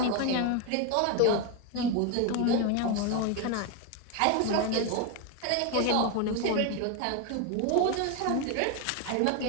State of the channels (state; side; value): different; both; correlation 0.02